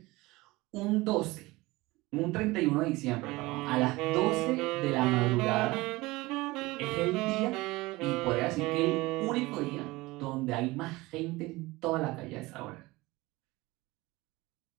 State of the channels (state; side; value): quieter; left; 21.1 dB